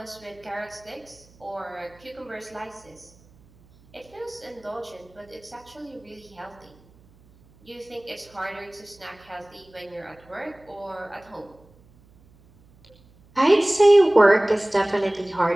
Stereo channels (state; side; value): noise; right; hum, 28 dB below the sound